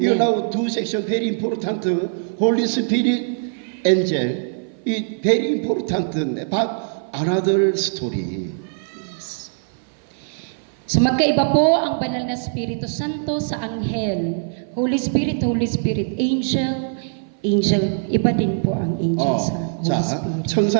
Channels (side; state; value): left; silent; 60 dB below the other